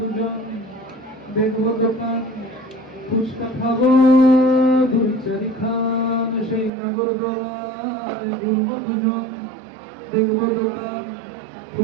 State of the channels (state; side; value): drops out; left; at 6.7 s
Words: দেখবো দোকান, ফুচকা খাবো দুই চারি খান। সেই নাগরদোলায় ঘুরবো দুজন, দেখবো দোকান,